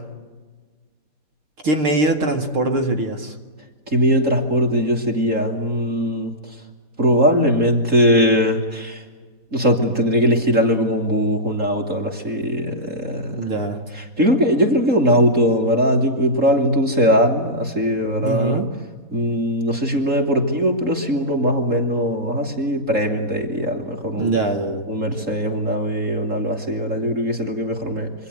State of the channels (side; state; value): left; late; 3.7 ms